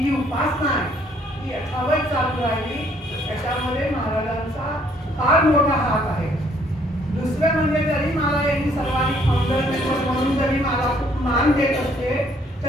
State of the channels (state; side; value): normal; both; correlation 0.64